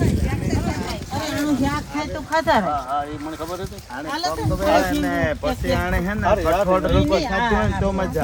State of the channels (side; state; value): both; identical; correlation 1.00